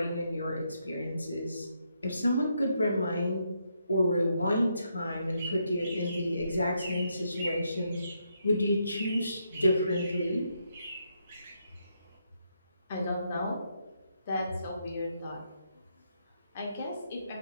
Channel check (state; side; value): inverted; both; correlation -0.78